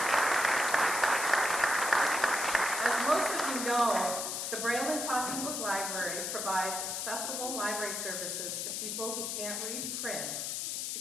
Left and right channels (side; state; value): left; noise; hiss, 2 dB below the sound